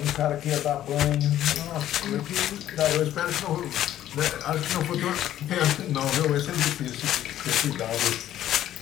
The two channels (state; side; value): quieter; right; 12.3 dB